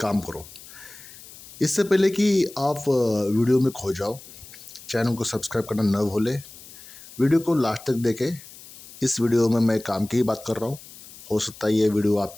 काम करो। इससे पहले कि आप वीडियो में खो जाओ, चैनल को सब्सक्राइब करना न भूलें। वीडियो को लास्ट तक देखें। इस वीडियो में मैं काम की ही बात कर रहा हूँ। हो सकता है ये वीडियो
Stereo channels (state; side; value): noise; left; hiss, 18 dB below the sound